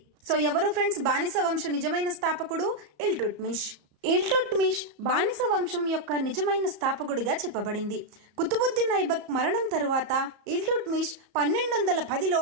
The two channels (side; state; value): left; late; 34 ms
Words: సో ఎవరు ఫ్రెండ్స్ బానిస వంశ నిజమైన స్థాపకుడు? ఇల్టుట్మిష్. ఇల్టుట్మిష్ బానిస వంశం యొక్క నిజమైన స్థాపకుడిగా చెప్పబడింది. కుతుబుద్దీన్ ఐబక్ మరణం తరువాత ఇల్టుట్మిష్ 1210లో